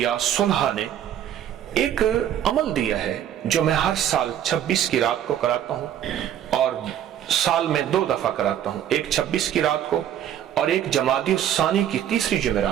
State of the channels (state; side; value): quieter; left; 10.6 dB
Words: صلحاء نے ایک عمل دیا ہے جو میں ہر سال 26 کی رات کو کراتا ہوں، اور سال میں 2 دفعہ کراتا ہوں، ایک 26 کی رات کو اور ایک جمادی الثانی کی تیسری